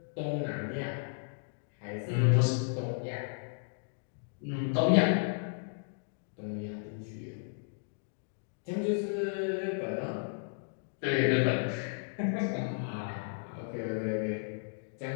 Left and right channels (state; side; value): silent; right; digital silence